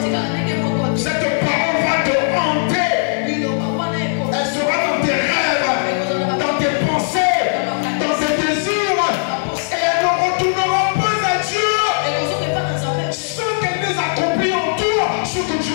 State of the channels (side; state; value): right; silent; digital silence